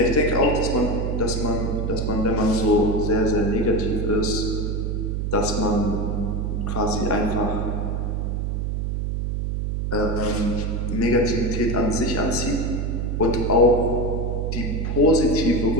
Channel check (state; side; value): noise; right; hum, 1 dB below the sound